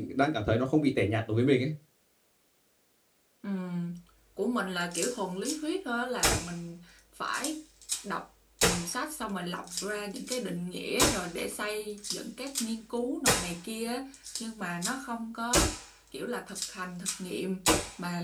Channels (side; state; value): both; identical; correlation 1.00